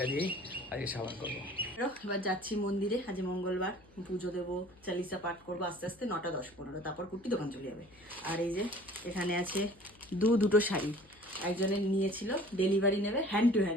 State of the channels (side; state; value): left; noise; hum, 27 dB below the sound